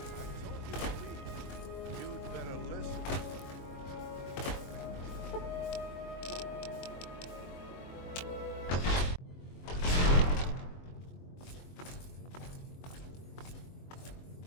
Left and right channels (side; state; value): right; late; 22 ms